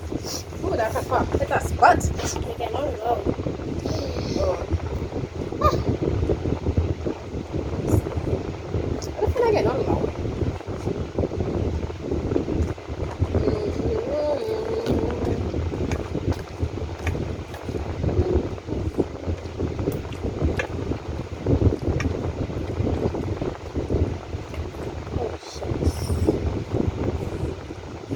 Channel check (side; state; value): both; identical; correlation 1.00